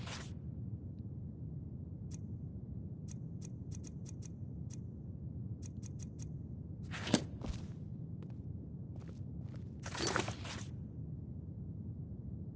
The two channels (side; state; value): both; identical; correlation 1.00